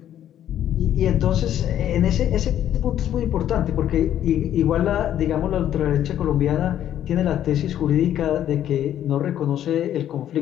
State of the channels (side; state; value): right; quieter; 11.0 dB